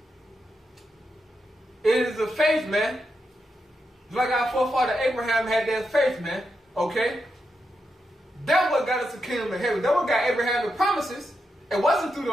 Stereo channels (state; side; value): normal; both; correlation 0.85